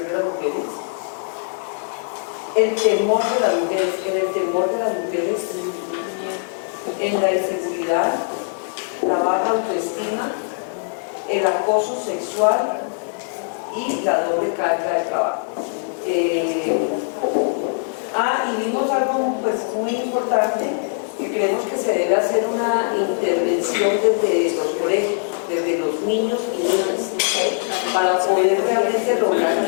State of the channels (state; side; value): silent; right; digital silence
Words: de las mujeres, el temor de las mujeres, en la inseguridad, la baja autoestima, el acoso sexual y la doble carga de trabajo. Y vimos algo pues, muy importante, que creemos que se debe hacer una intervención desde los colegios, desde los niños y niñas, para poder realmente lograr